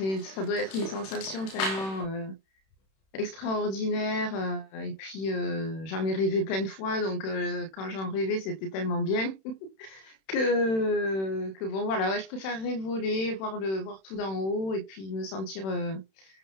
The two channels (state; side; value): late; right; 31 ms